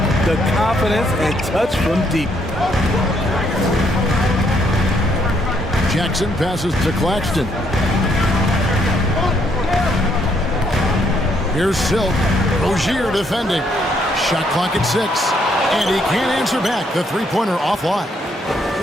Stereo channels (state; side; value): normal; both; correlation 0.71